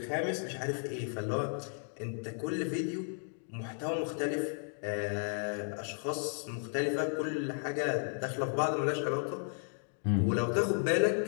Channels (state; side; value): silent; right; 55 dB below the other